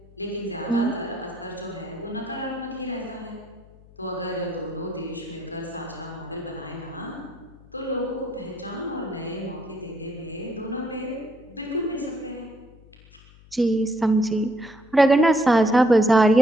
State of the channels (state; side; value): noise; left; hum, 24 dB below the sound